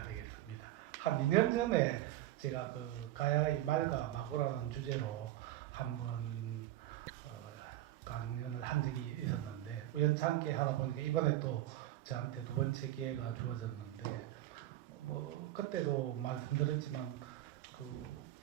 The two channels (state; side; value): quieter; left; 14.5 dB